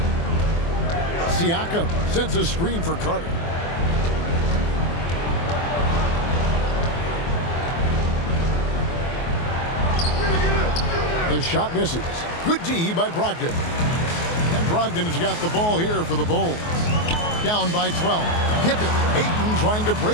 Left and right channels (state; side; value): late; right; 24 ms